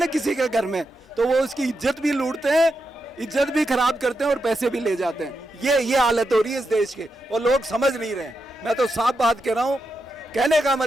किसी के घर में, तो वो उसकी इज्जत भी लूटते हैं, इज्जत भी खराब करते हैं और पैसे भी ले जाते हैं। ये हालत हो रही है इस देश के, और लोग समझ नहीं रहे हैं। मैं तो साफ बात कह रहा हूँ, कहने का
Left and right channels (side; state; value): both; normal; correlation 0.86